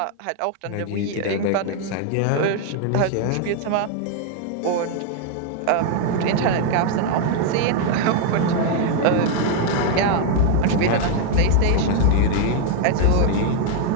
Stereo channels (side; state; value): both; different; correlation 0.00